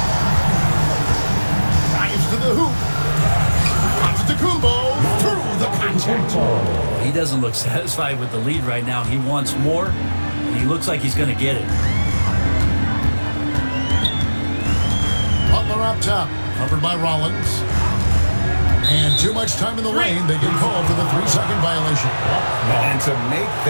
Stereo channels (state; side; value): inverted; both; correlation -1.00